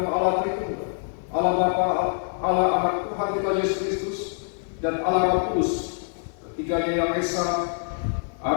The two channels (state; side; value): silent; right; 62 dB below the other